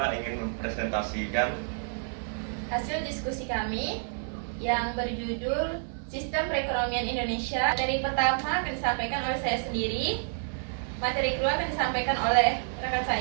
ingin mempresentasikan hasil diskusi kami yang berjudul Sistem Perekonomian Indonesia. Materi pertama akan disampaikan oleh saya sendiri. Materi kedua akan disampaikan oleh rekan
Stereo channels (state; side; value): silent; left; digital silence